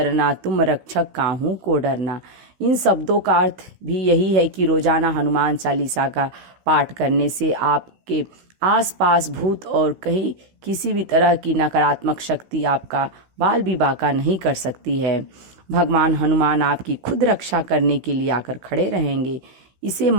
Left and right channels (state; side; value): late; left; 16 ms